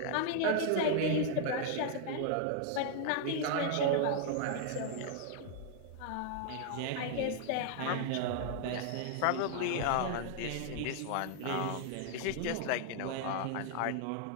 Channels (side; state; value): both; different; correlation 0.00